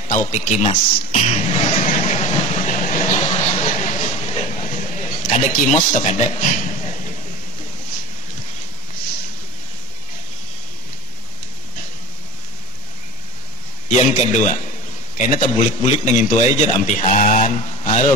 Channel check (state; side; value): normal; both; correlation 0.23